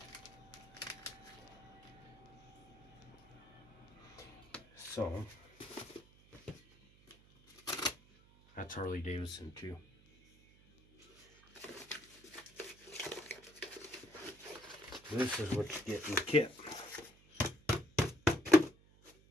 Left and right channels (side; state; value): right; noise; hum, 26 dB below the sound